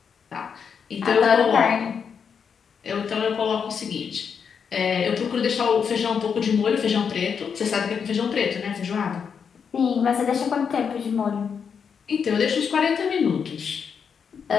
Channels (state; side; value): quieter; right; 6.7 dB